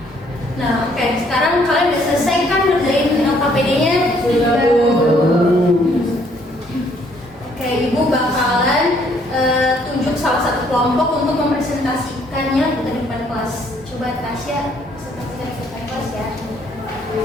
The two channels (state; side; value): normal; both; correlation 0.65